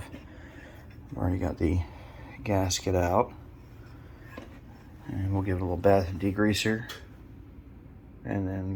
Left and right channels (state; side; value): identical; both; correlation 1.00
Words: I've already got the gasket out, and we'll give it a little bath and degreaser and